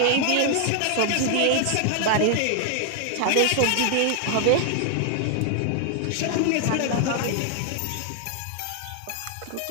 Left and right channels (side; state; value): both; different; correlation 0.00